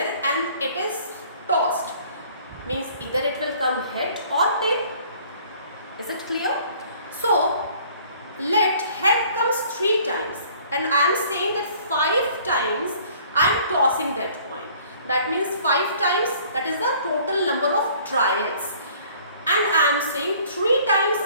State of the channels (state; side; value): inverted; both; correlation -0.55